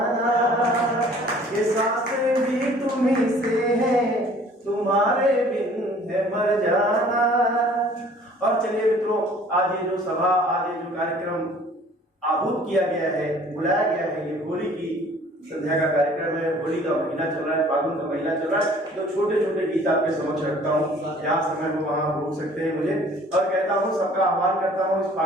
ये सांसें भी तुम्ही से हैं, तुम्हारे बिन है मर जाना। और चलिए मित्रों, आज ये जो सभा, आज ये जो कार्यक्रम आहूत किया गया है, बुलाया गया है। ये होली की संध्या का कार्यक्रम है, होली का महीना चल रहा है, फागुन का महीना चल रहा है, तो छोटे छोटे गीत आपके समक्ष रखता हूँ। जहाँ समय हो वहाँ रोक सकते हैं मुझे, और कहता हूँ सबका आह्वान करता हूँ इस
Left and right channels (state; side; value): normal; both; correlation 0.53